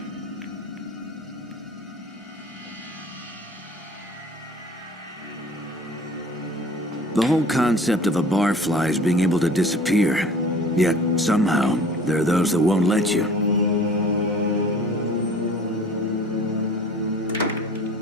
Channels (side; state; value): both; normal; correlation 0.46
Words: The whole concept of a barfly is being able to disappear. Yet, somehow, there are those that won't let you.